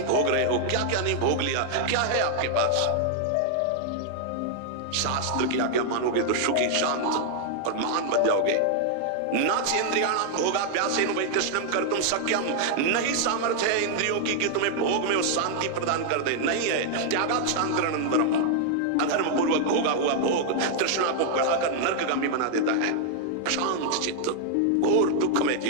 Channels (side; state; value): both; different; correlation 0.00